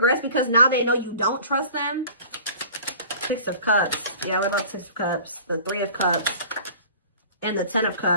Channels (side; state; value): both; inverted; correlation -0.44